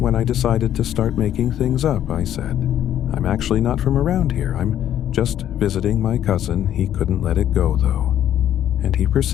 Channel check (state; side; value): quieter; right; 11.0 dB